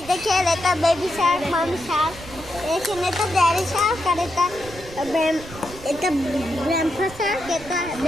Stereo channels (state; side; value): noise; right; rumble, 16 dB below the sound